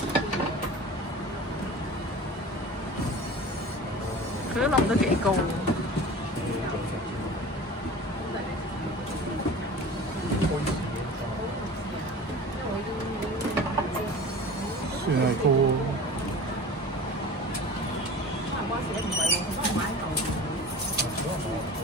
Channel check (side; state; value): both; normal; correlation 0.38